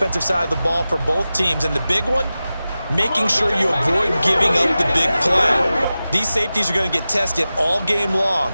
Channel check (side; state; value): both; inverted; correlation -0.95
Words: side of the ball for both teams. And the big one, making sure you avoid giving up the big play. These safeties are going to get tested all game long.